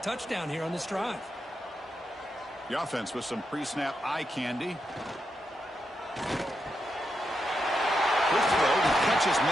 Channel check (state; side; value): normal; both; correlation 0.84